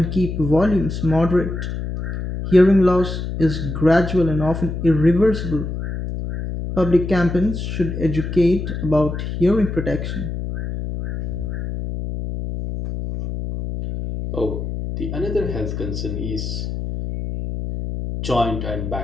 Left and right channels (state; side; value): noise; left; hum, 5 dB below the sound